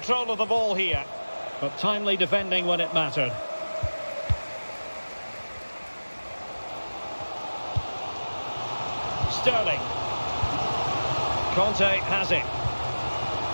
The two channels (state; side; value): inverted; both; correlation -1.00